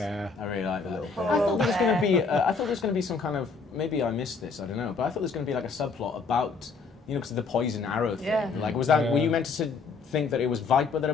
I really like that. little I thought there was going to bear. be. I thought there was going to be some kind of. Maybe I missed this. I don't know. But I thought there was going to be like a subplot about, because of the poison arrow thing. Yeah. Like, was that? Yeah. Were you meant to think that it was Viper that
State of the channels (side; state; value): right; quieter; 4.7 dB